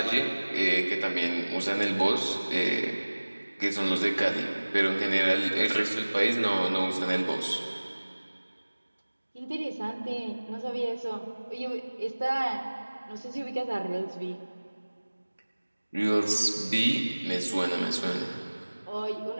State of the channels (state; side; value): inverted; both; correlation -1.00